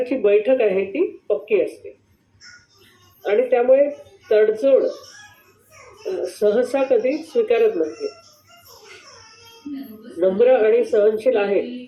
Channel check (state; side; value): identical; both; correlation 1.00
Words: बैठक आहे ती पक्की असते आणि त्यामुळे तडजोड सहसा कधी स्वीकारत नसते. नम्र आणि सहनशील आहे